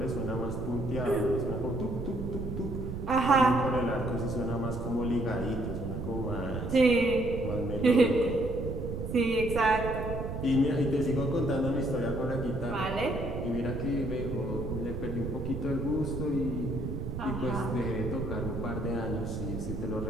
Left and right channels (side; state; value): right; noise; rumble, 5 dB below the sound